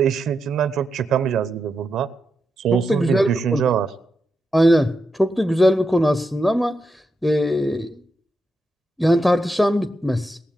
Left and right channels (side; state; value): both; normal; correlation 0.86